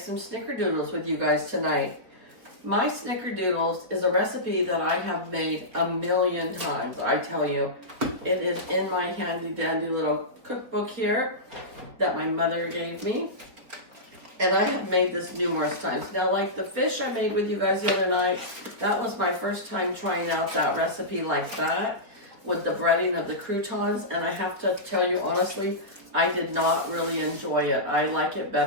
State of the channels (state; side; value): late; left; 4.6 ms